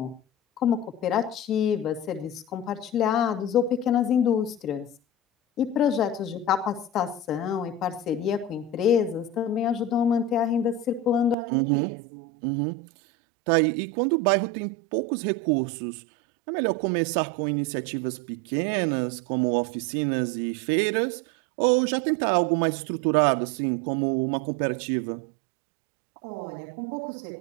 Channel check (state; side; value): drops out; left; at 11.4 s